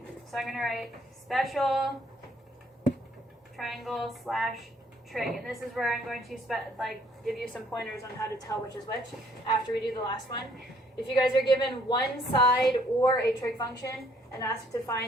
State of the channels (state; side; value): normal; both; correlation 0.64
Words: So I'm going to write special triangle / trig, and this is where I'm going to give you some pointers on how to tell which is which after we do the last one. If you guys are given 1 side or a trig function and asked to